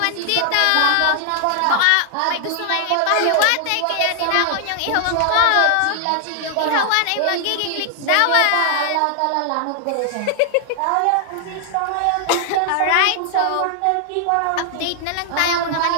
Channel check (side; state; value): both; different; correlation 0.00